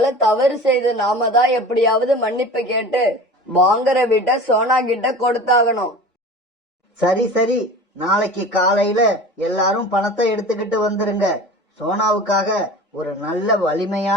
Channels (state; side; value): normal; both; correlation 0.37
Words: தவறு செய்து நாம தான் எப்படியாவது மன்னிப்பு கேட்டு வாங்குற வீட்டை சோனா கிட்ட கொடுத்தாகணும். சரி சரி, நாளைக்கு காலையில எல்லாரும் பணத்தை எடுத்துக்கிட்டு வந்துருங்க. சோனாவுக்காக ஒரு நல்ல